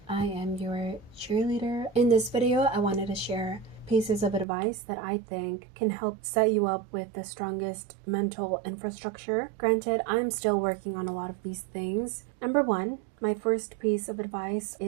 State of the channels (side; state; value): left; drops out; at 4.5 s